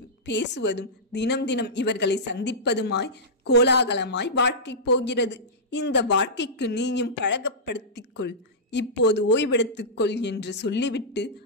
பேசுவதும், தினம் தினம் இவர்களை சந்திப்பதுமாய் கோலாகலமாய் வாழ்க்கை போகிறது. இந்த வாழ்க்கைக்கு நீயும் பழகப்படுத்திக்கொள், இப்போது ஓய்வெடுத்துக்கொள் என்று சொல்லிவிட்டு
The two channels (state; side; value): normal; both; correlation -0.15